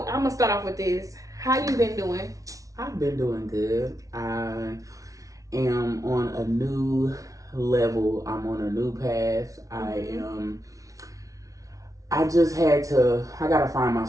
I'm gonna start off with this. How you been doing? I've been doing good. I am on a new level. I'm on a new path. I just I gotta find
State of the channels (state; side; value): late; left; 0.17 ms